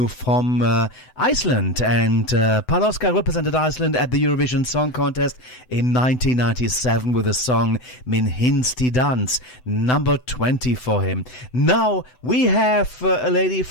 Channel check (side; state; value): right; late; 7.9 ms